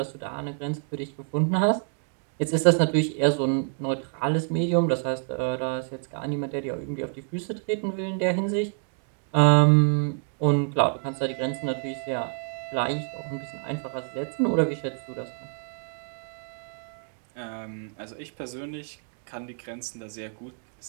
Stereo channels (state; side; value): silent; left; 55 dB below the other